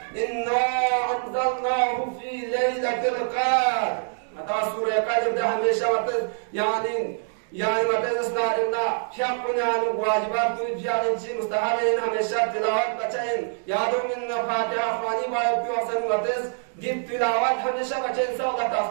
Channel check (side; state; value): left; silent; digital silence